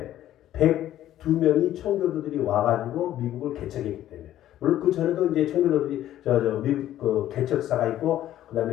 102명이 청교도들이 와가지고 미국을 개척했기 때문에. 물론 그 전에도 이제 청교도들이 미국 그 개척사가 있고, 그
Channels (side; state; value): right; quieter; 12.7 dB